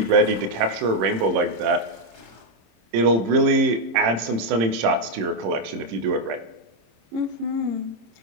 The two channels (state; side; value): late; left; 26 ms